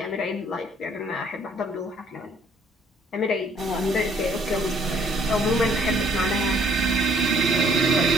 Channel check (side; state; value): both; normal; correlation 0.62